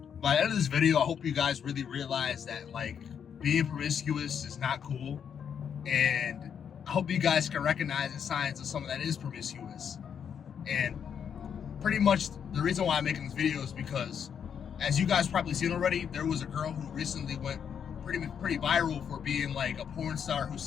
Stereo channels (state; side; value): quieter; right; 7.8 dB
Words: By the end of this video, I hope you guys really realize that like being promiscuous is not cool, and I hope you guys can recognize the signs of someone that is promiscuous. And pretty much the reason why I'm making this video is because, as you guys probably seen already, there was a girl who recently went pretty viral for being like a porn star who